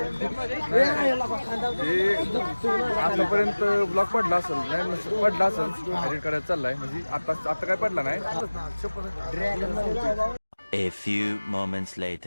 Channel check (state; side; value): inverted; both; correlation -1.00